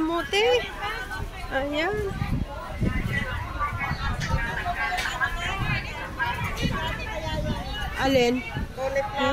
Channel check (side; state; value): both; identical; correlation 1.00